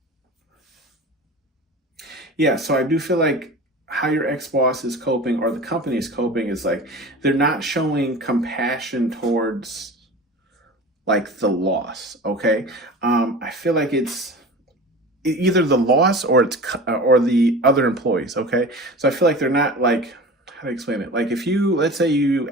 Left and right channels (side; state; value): both; normal; correlation 0.36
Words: Yeah, so I do feel like how your ex-boss is coping or the company is coping is like they're not showing compassion towards like the loss. Okay. I feel like it's either the loss or or the other employees. Okay. So I feel like they're not like, how to explain it? Like if let's say you